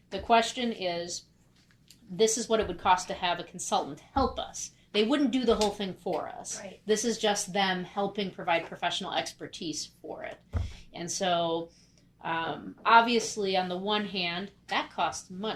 The question is, this is what it would cost to have a consultant help us. They wouldn't do the whole thing for us. Right. This is just them helping provide professional expertise for it. And so obviously on the one hand, that costs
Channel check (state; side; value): identical; both; correlation 1.00